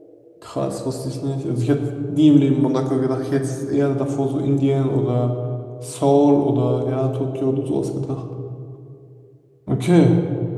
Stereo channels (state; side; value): identical; both; correlation 1.00